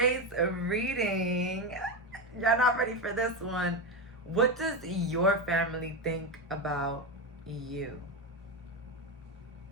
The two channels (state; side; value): normal; both; correlation 0.13